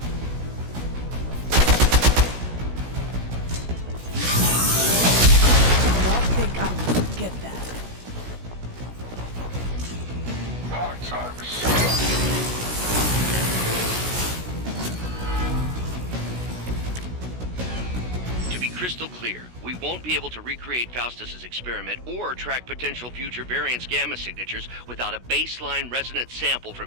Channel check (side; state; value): left; late; 16 ms